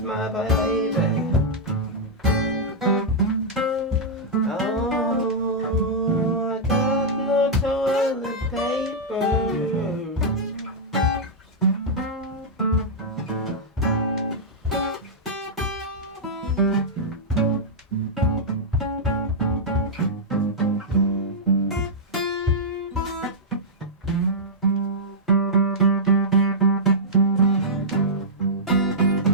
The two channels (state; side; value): normal; both; correlation -0.09